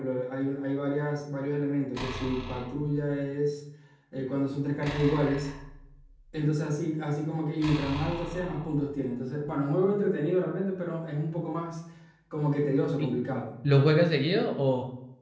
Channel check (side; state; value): both; identical; correlation 1.00